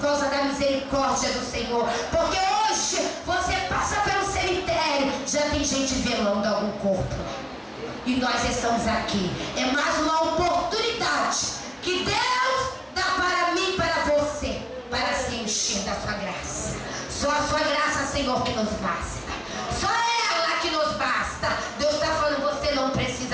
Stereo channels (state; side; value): identical; both; correlation 1.00